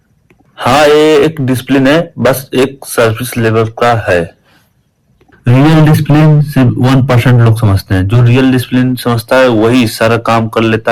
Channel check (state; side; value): identical; both; correlation 1.00